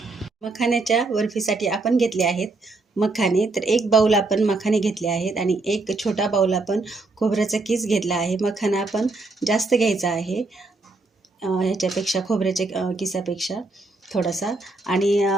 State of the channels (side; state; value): left; quieter; 3.4 dB